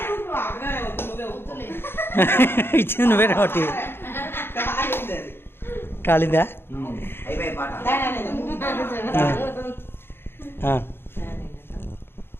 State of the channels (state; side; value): late; right; 0.11 ms